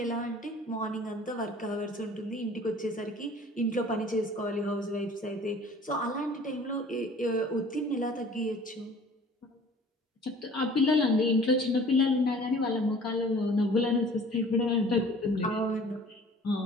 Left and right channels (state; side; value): normal; both; correlation 0.49